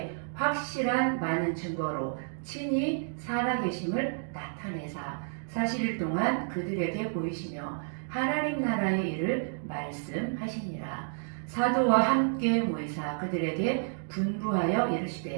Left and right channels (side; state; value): left; silent; digital silence